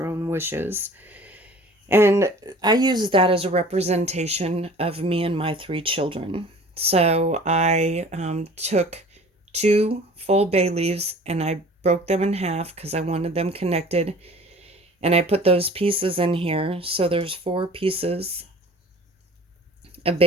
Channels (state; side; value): normal; both; correlation 0.46